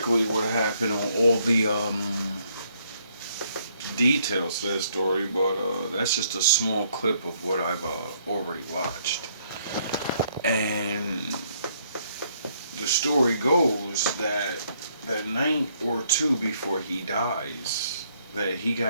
what happened on all the details to that story, but that's just a small clip of what I've already watched. And the story goes that that night or two before he dies, that he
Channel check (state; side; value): inverted; both; correlation -0.69